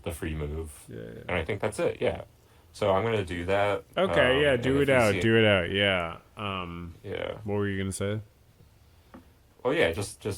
the free move. Yeah. And I think that's it, yeah. So I'm gonna do that. Okay, yeah, And do if it you out, see it, do it out, yeah. yeah. What were you gonna say? Well, yeah,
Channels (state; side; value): identical; both; correlation 1.00